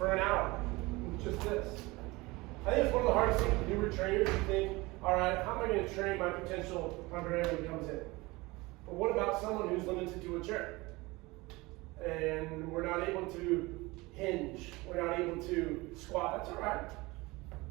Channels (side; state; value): left; quieter; 22.6 dB